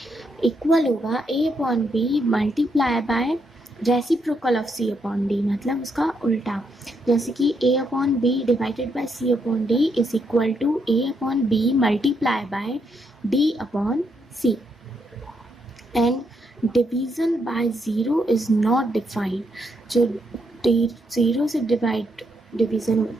equal होगा a upon B multiply by reciprocal of c upon D, मतलब उसका उल्टा. जैसे कि a upon B divided by c upon D is equal to a upon B multiply by d upon c. And division by 0 is not defined. जो 0 से division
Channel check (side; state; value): both; normal; correlation 0.77